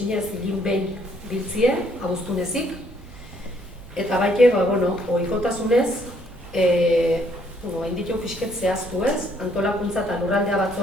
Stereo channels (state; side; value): normal; both; correlation 0.67